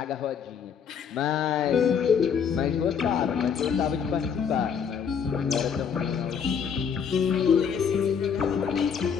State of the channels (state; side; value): quieter; right; 7.1 dB